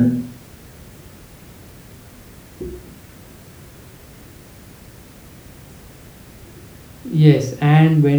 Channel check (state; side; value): identical; both; correlation 1.00